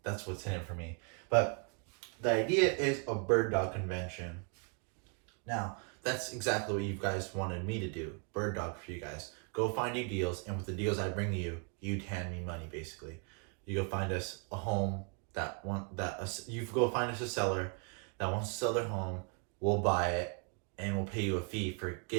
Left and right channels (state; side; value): quieter; left; 37.1 dB